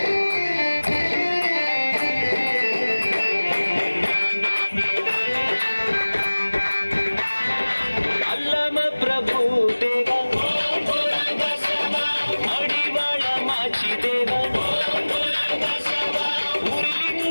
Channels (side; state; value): both; inverted; correlation -1.00